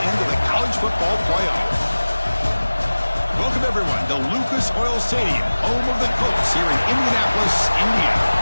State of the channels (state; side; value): inverted; both; correlation -1.00